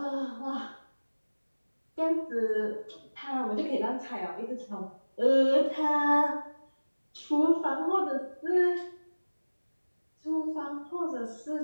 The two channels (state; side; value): inverted; both; correlation -1.00